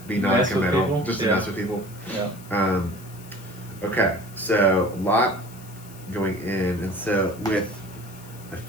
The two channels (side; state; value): left; noise; hiss, 20 dB below the sound